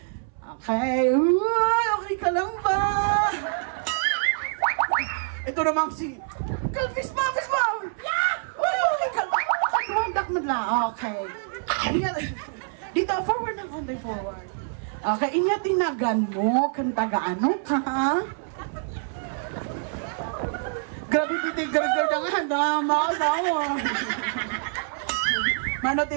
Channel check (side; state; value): left; silent; 60 dB below the other